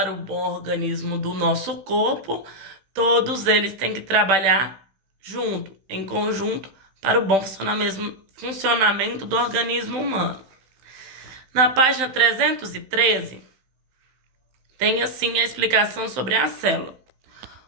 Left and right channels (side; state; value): left; late; 15 ms